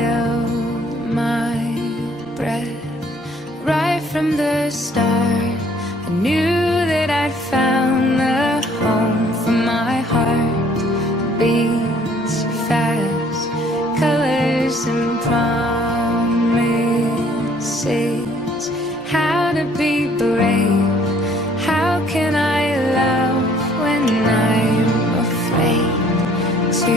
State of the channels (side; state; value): both; normal; correlation 0.60